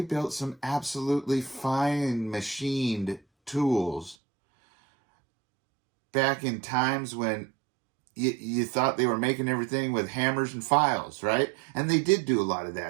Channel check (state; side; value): drops out; left; at 4.2 s